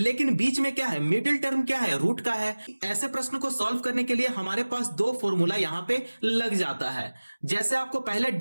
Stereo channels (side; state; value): both; inverted; correlation -1.00